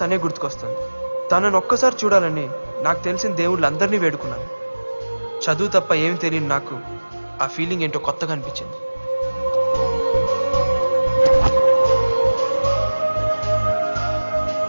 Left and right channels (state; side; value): inverted; both; correlation -1.00